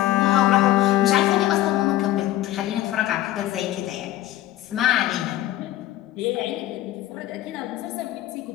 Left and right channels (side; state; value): right; quieter; 14.4 dB